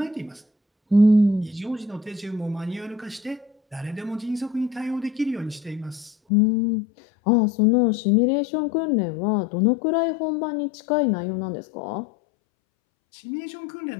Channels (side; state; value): right; drops out; at 6.2 s